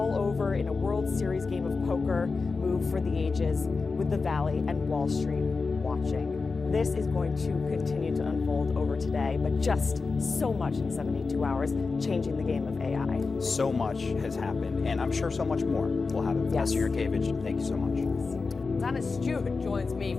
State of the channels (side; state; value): right; quieter; 4.3 dB